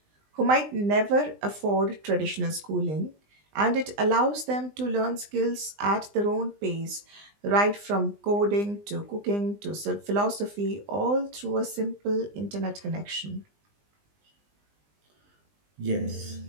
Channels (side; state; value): left; late; 20 ms